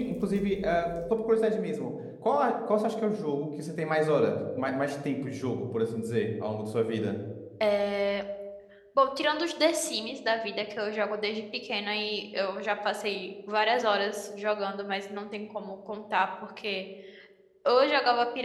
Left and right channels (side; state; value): both; identical; correlation 1.00